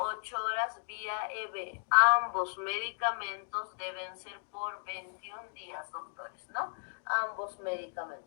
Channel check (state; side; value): silent; right; digital silence